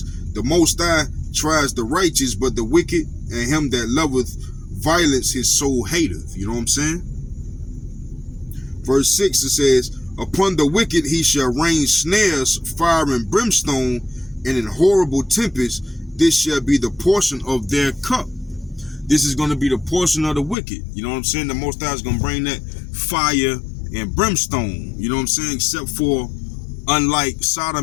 "The Most High tries the righteous, but the wicked and him that loveth violence his soul hateth." You know what I'm saying? Verse 6, it says, "Upon the wicked he shall rain snares, fire and brimstone, and in horrible tempest, this shall be the portion of their cup." This is going to be the portion of the wicked. You know what I'm saying? The Most High is going to bring that fire and brimstone. You know what I'm saying? Except for, unlike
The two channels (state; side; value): drops out; right; at 20.6 s